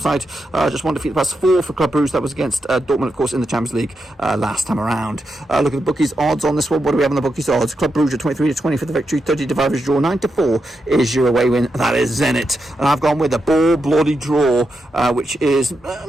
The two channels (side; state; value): both; normal; correlation 0.85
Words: side, just 1 defeat the past 4 for Club Brugge. That was against Dortmund, of course, in the Champions League last time around. Look at the bookies odds on this one. What do we have on the bookies odds? Club Brugge 23-20 for the victory, 30-5 is draw, 9-4 is your away win. That is Zenit. And I've gone with a bloody draw, which is